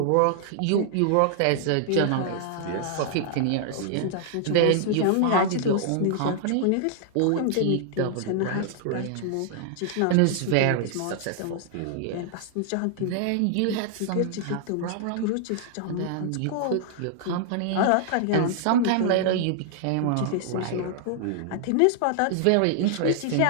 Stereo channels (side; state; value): both; different; correlation 0.00